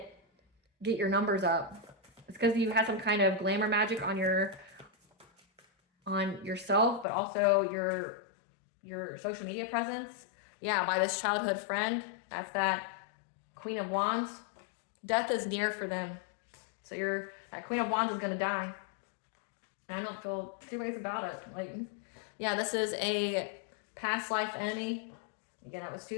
get your numbers up. It's because you had some kind of glamour magic on yourself, but also your social media presence. Yeah, by this childhood friend. That's that Queen of Wands. Death is near for them. So that Queen of Wands is going to die. And I don't feel two ways about it. Like, yeah, this is a past life enemy. Again, that was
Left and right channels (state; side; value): drops out; right; at 7.1 s